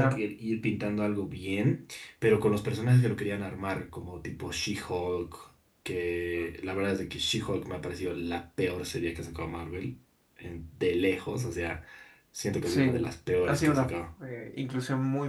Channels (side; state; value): both; identical; correlation 1.00